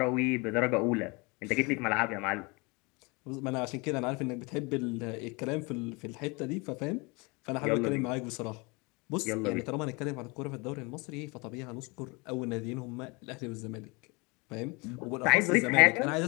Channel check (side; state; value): right; quieter; 27.9 dB